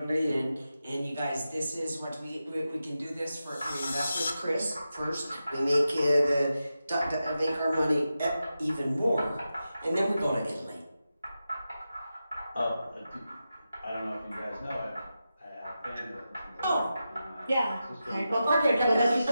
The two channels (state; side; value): inverted; both; correlation -0.91